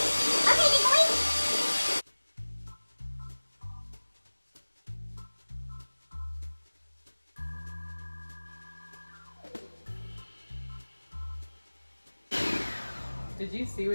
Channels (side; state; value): both; inverted; correlation -1.00